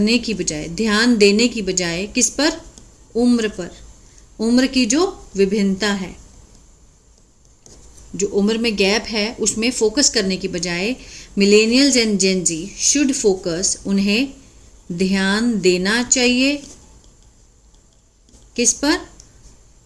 की बजाय, ध्यान देने की बजाय, किस पर, उम्र पर, उम्र की जो विभिन्नता है, जो उम्र में गैप है उसमें फोकस करने की बजाय millennials and Gen Z should focus, उन्हें ध्यान देना चाहिए किस पर,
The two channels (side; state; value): both; identical; correlation 1.00